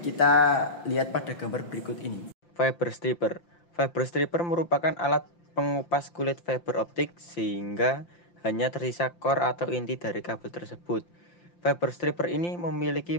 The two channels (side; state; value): right; late; 5.8 ms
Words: kita lihat pada gambar berikut ini. Fiber stripper. Fiber stripper merupakan alat pengupas kulit fiber optik sehingga hanya tersisa core atau inti dari kabel tersebut. Fiber stripper ini